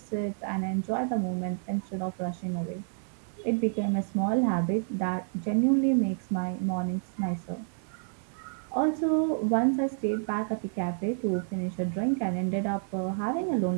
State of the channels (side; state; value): left; silent; digital silence